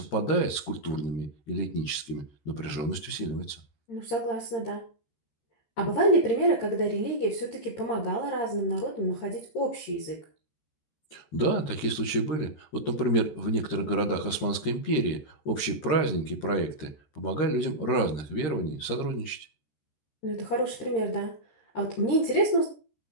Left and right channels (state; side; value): late; right; 14 ms